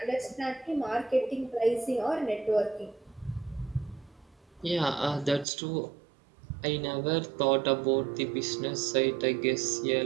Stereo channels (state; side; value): drops out; left; at 5.5 s